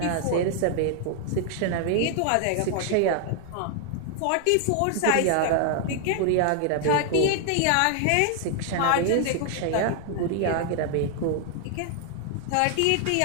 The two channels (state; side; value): different; both; correlation 0.00